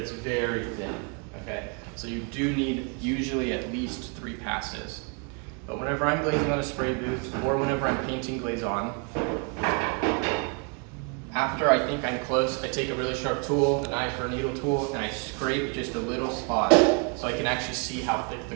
very thin, okay? So you do need usually at least 3 passes. But whenever I'm glazing on a spray booth, or whenever I'm painting glaze on, after I think I'm close, I take a really sharp tool, a knife or a needle tool, and I scrape just a little spot so I can actually see how thick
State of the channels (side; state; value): left; quieter; 36.6 dB